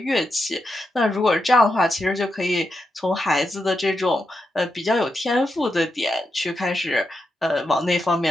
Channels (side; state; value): both; normal; correlation 0.85